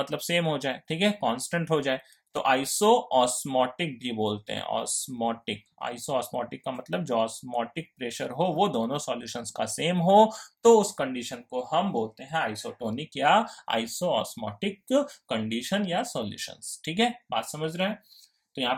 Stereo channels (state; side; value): identical; both; correlation 1.00